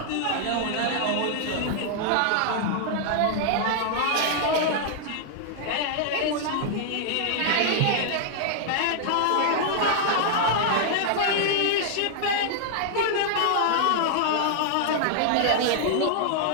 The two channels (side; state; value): both; different; correlation -0.01